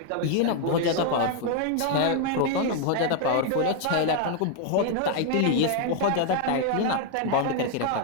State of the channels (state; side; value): different; both; correlation 0.00